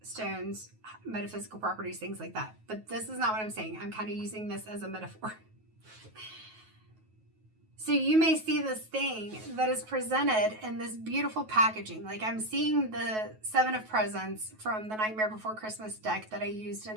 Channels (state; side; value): late; left; 9.3 ms